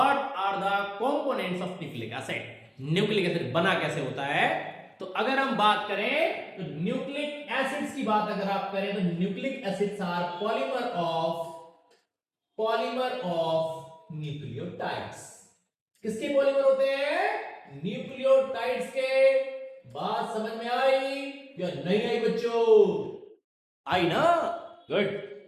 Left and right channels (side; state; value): both; identical; correlation 1.00